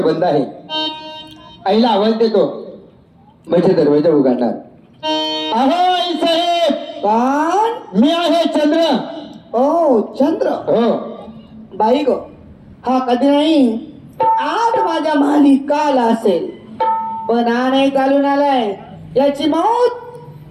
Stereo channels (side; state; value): both; identical; correlation 1.00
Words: बंद आहे आईला आवाज देतो म्हणजे दरवाजा उघडणार अहो आई साहेब कोण मी आहे चंद्र ओ चंद्र हो बाई गो हा कधी नाही आज माझ्या माली काल असेल पण हा नाही चालून आलाय याची